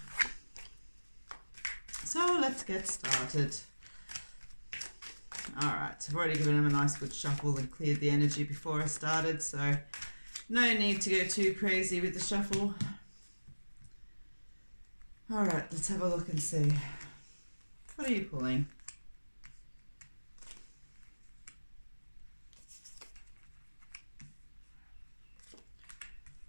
So let's get started. All right, I've already given him a nice good shuffle and cleared the energy before I started, so no need to go too crazy with the shuffle. All right, let's have a look and see. What are you pulling?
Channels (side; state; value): both; inverted; correlation -1.00